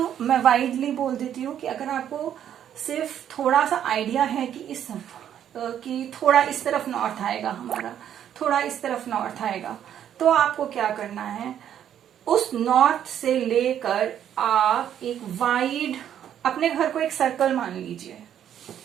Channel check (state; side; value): quieter; left; 9.9 dB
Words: मैं वाइडली बोल देती हूँ कि अगर आपको सिर्फ थोड़ा सा आइडिया है कि थोड़ा इस तरफ नॉर्थ आएगा हमारा, थोड़ा इस तरफ नॉर्थ आएगा, तो आपको क्या करना है, उस नॉर्थ से लेकर आप एक वाइड अपने घर को एक सर्कल मान लीजिए,